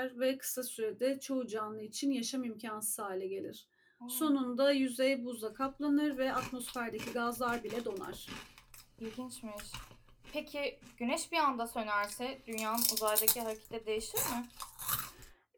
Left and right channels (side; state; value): both; identical; correlation 1.00